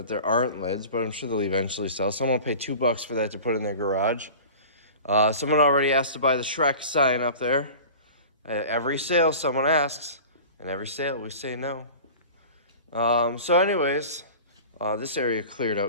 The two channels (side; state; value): both; inverted; correlation -0.38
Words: there aren't lids, but I'm sure they'll eventually sell. Someone will pay $2 for that to put in their garage. Someone already asked to buy the Shrek sign up there. At every sale, someone asks, and every sale we say no. So anyways, this area cleared